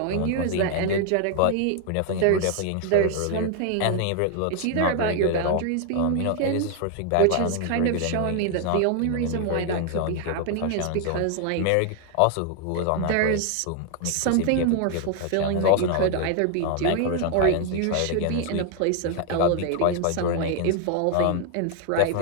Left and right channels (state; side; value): different; both; correlation 0.00